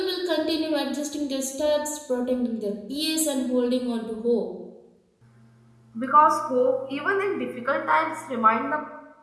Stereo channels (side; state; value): both; identical; correlation 1.00